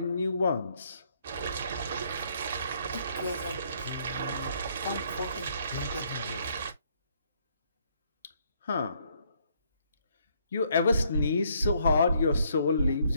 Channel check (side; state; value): both; inverted; correlation -0.69